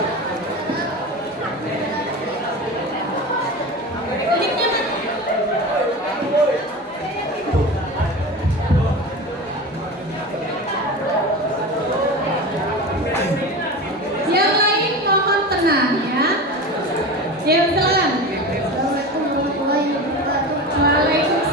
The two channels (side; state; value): both; normal; correlation 0.29